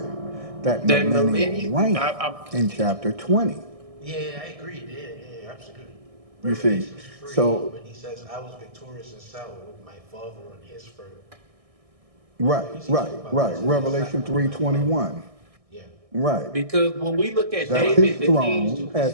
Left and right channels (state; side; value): late; left; 1.6 ms